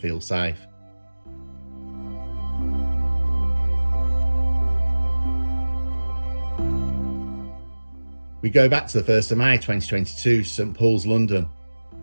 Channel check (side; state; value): both; inverted; correlation -1.00